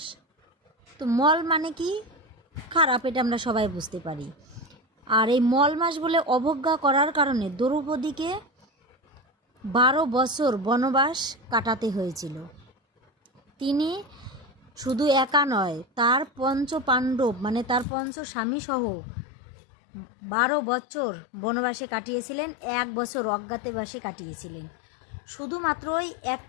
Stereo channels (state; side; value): drops out; right; at 17.9 s